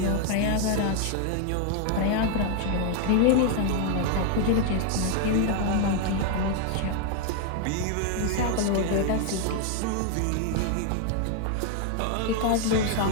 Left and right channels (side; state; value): both; different; correlation 0.00